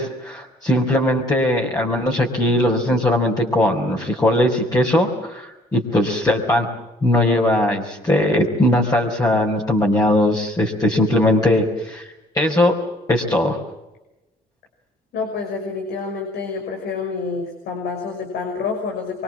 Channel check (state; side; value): normal; both; correlation 0.59